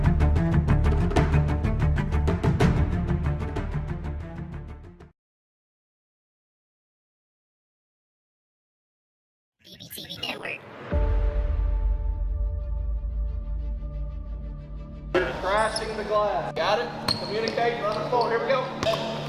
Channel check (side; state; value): both; identical; correlation 1.00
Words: BBTV Network. Crashing the glass. Got it? Communicating on the phone. Here we go.